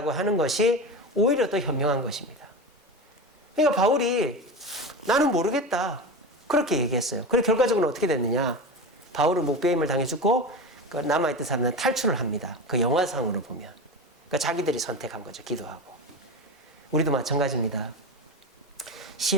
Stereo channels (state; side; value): normal; both; correlation 0.24